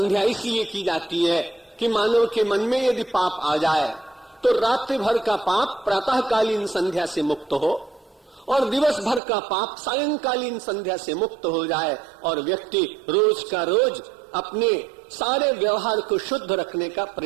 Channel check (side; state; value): left; drops out; at 9.2 s